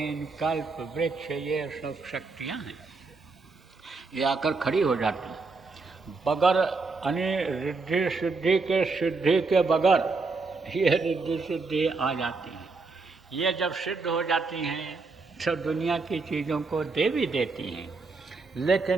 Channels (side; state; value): left; quieter; 4.0 dB